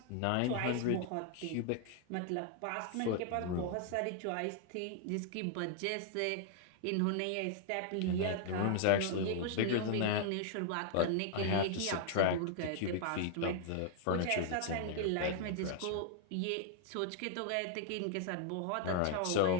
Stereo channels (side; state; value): both; different; correlation 0.00